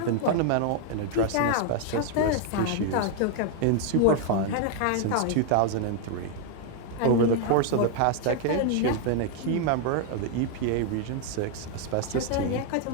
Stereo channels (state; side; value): different; both; correlation 0.00